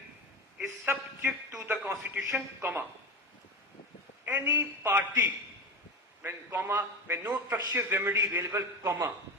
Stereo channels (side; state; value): both; normal; correlation 0.22